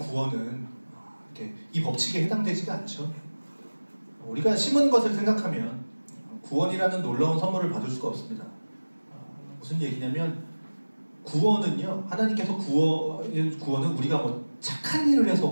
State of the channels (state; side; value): inverted; both; correlation -1.00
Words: 이렇게 이 법칙에 해당되지가 않죠. 우리가 심은 것을 생각하면 구원이라는 놀라운 선물을 받을 수가 없습니다. 무슨 얘기냐면 구원은요, 하나님께서 구원은 우리가 뭐 착한 일을 해서